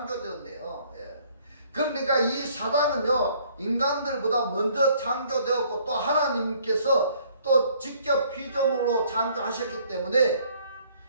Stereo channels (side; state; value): both; inverted; correlation -0.61